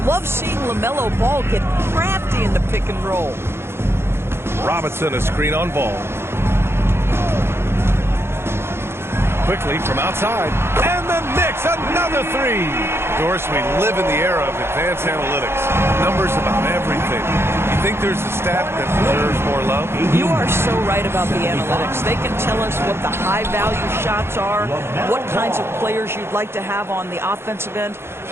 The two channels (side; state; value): left; late; 0.12 ms